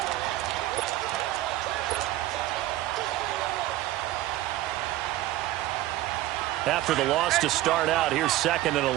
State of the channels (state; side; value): quieter; left; 15.4 dB